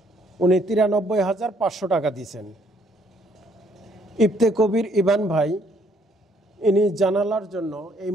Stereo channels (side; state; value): both; normal; correlation 0.67